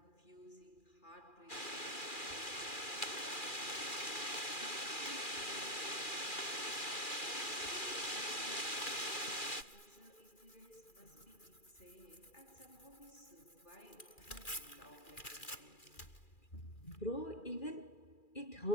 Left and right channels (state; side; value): late; right; 2.4 ms